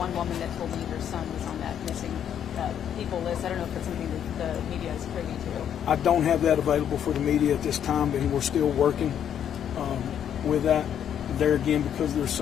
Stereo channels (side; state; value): right; quieter; 9.3 dB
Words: woman that told me her son was on that missing people list. I don't know if it's something that the media is privy to. I don't have that available for the media at this time, and we're still working with that. There again, because there's